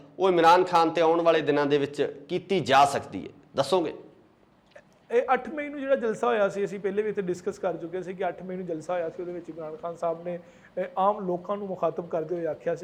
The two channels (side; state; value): both; identical; correlation 1.00